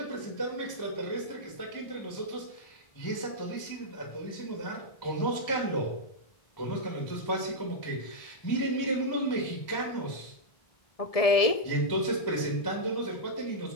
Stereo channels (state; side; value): late; right; 1.7 ms